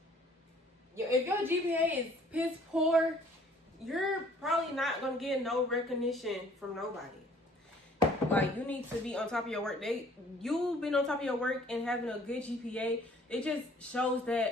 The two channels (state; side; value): normal; both; correlation 0.57